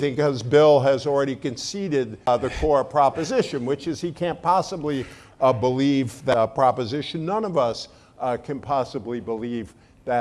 because Bill has already conceded the core proposition, which is he can't possibly believe that proposition. None of us can possibly believe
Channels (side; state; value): both; identical; correlation 1.00